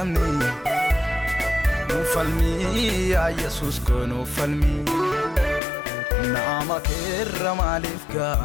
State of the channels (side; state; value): right; drops out; at 5.6 s